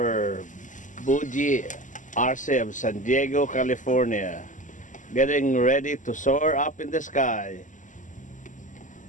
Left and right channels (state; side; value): late; right; 0.37 ms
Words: Buji Arce of San Diego, California. Getting ready to soar up in the sky.